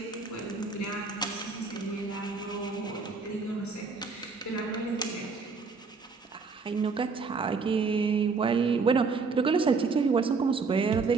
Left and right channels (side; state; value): left; quieter; 4.6 dB